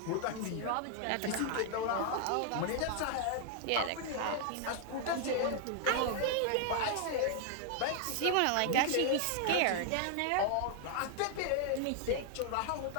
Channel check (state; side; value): different; both; correlation 0.00